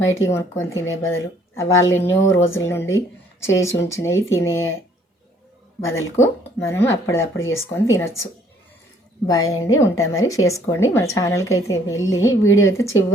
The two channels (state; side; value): normal; both; correlation 0.62